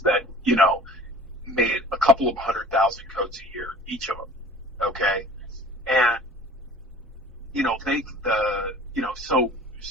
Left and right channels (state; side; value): normal; both; correlation 0.45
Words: that made a couple of 100,000 coats a year, each of them. Okay, and